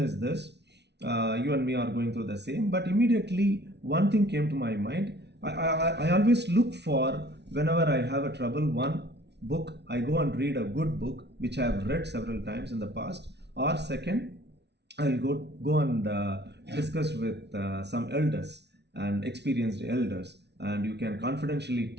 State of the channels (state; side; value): late; left; 0.50 ms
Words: this: you and me are going through the same. But immediately one thing came to my mind. I always look for, whenever I have a trouble, one book, I go and read a good book which I have read several times in the past, or second, I'll go and discuss with some elders and experienced elders, and you can confidentially